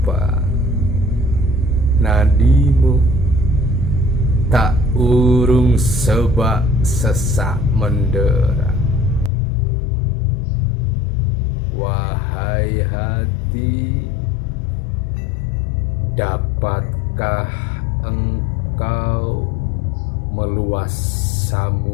nadimu tak urung sebak sesak mendera. Wahai hati, dapatkah engkau meluas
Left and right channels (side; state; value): right; drops out; at 9.3 s